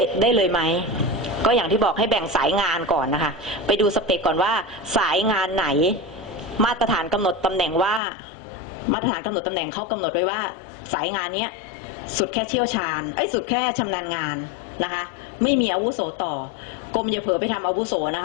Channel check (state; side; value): drops out; right; at 8.0 s